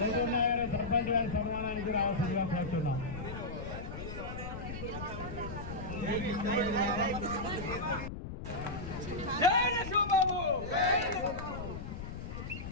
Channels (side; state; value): left; noise; rumble, 8 dB below the sound